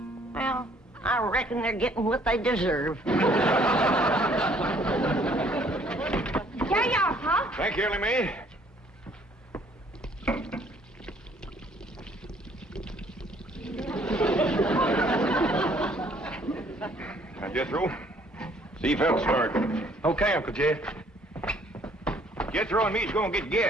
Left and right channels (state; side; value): normal; both; correlation 0.61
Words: Well, I reckon they're getting what they deserve. Here you are, Pop. Thank you, Ellie Mae. Now, Jethro, see if that'll start. Okay, Uncle Jed. Jethro and me's gonna get